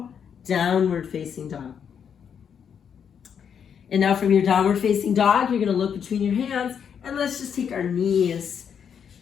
downward facing dog. And now from your downward facing dog, you're gonna look between your hands, and let's just take our knees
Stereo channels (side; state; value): right; quieter; 7.6 dB